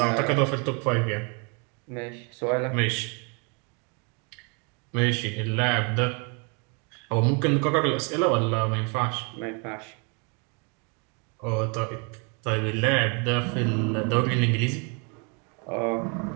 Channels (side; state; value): left; quieter; 34.9 dB